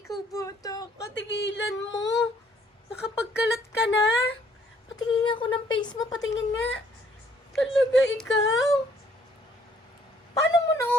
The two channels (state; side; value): normal; both; correlation 0.64